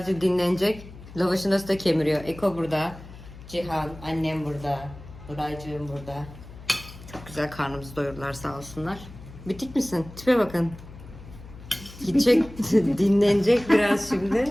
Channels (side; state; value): left; noise; hum, 17 dB below the sound